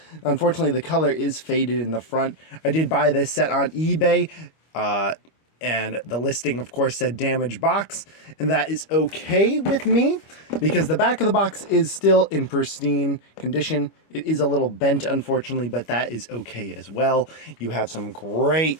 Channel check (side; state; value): right; late; 25 ms